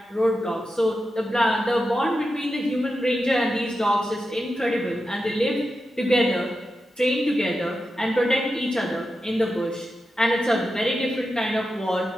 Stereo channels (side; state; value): both; normal; correlation 0.90